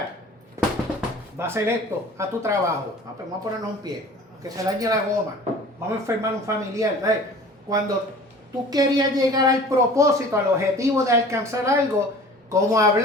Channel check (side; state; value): both; normal; correlation 0.44